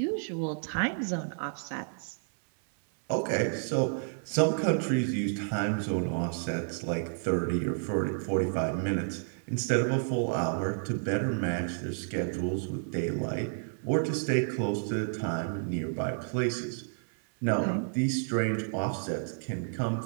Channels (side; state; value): left; silent; 57 dB below the other